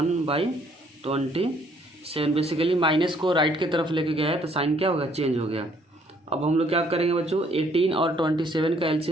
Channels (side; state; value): both; normal; correlation 0.64